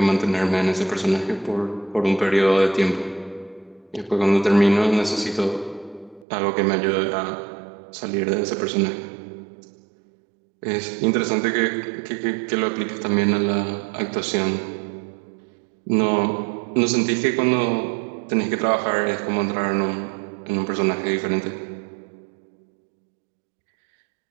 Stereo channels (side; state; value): left; drops out; at 6.2 s